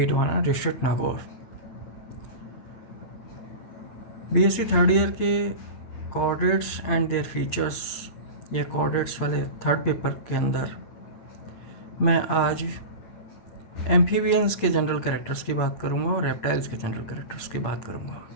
District Nagaur. BSc third year के coordinates and their features या coordinates वाले third paper के अंदर मैं आज amphibians के general characters की बात करूंगा और रेप्टाइल्स के जनरल कैरेक्टर्स की बात करूंगा।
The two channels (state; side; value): late; right; 8.5 ms